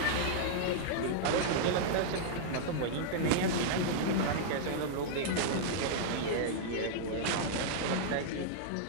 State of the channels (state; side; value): different; both; correlation -0.02